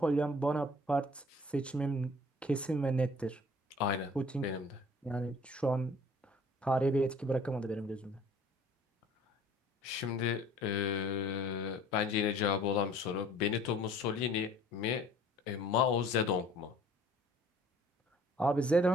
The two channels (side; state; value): both; normal; correlation 0.52